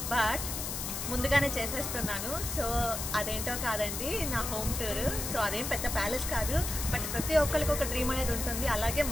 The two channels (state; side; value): noise; left; hiss, 4 dB below the sound